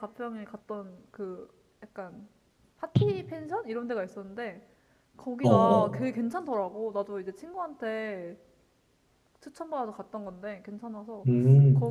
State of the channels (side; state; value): both; identical; correlation 1.00